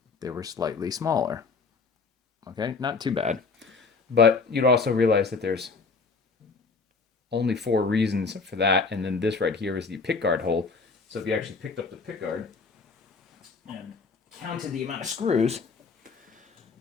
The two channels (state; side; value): quieter; right; 4.6 dB